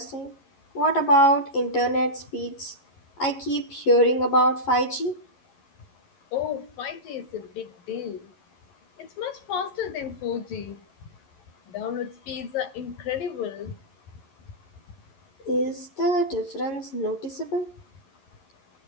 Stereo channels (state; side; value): late; right; 11 ms